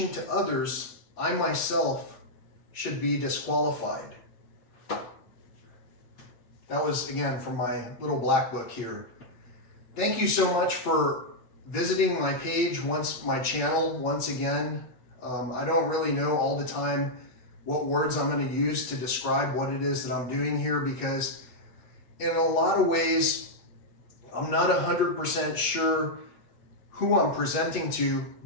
to others, I myself should be disqualified. That was, again, from my little black book here. Thank you so much for visiting my page, my channel once again. I don't really know all the time what words I'm going to use to describe what it is that I'm doing here, because in a lot of ways, I'm not 100% sure who I'm presenting to,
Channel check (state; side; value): late; right; 8.3 ms